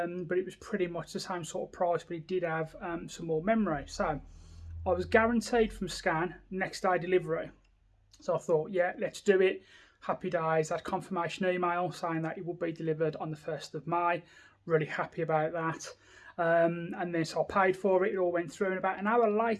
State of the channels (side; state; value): both; identical; correlation 1.00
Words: it was pretty much the same sort of price, but it did have some more memory. So I was guaranteed from Scan next day delivery. So I thought, yeah, let's do it. Happy days. I had confirmation email saying that it would be delivered on the 1st of May. Really happy about that. And then so I paid for it, it all went through, and about an hour